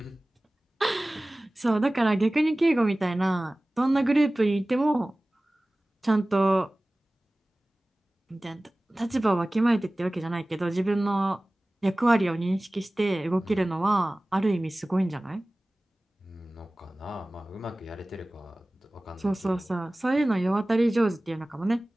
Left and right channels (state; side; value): normal; both; correlation 0.98